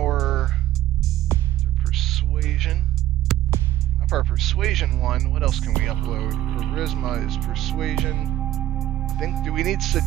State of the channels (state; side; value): quieter; left; 13.9 dB